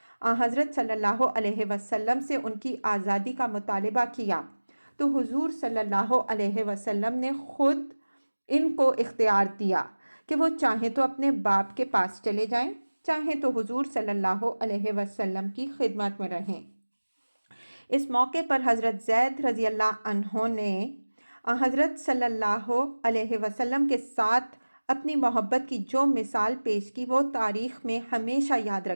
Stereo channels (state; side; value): inverted; both; correlation -1.00